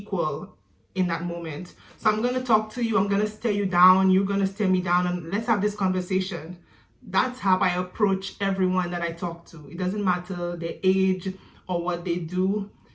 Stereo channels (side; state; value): both; identical; correlation 1.00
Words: in that moment. So I'm going to talk to you. I'm going to stare you down. You're going to stare me down, and let's have this conversation. That's how I approach everyone that I talk to. It doesn't matter their age or what they do.